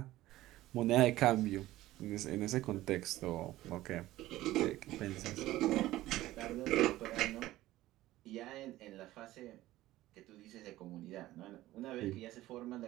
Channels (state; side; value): quieter; left; 16.1 dB